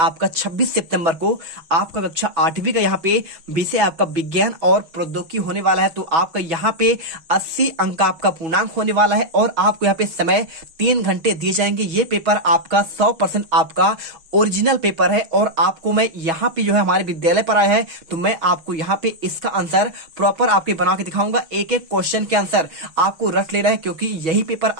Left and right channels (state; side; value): late; left; 6.3 ms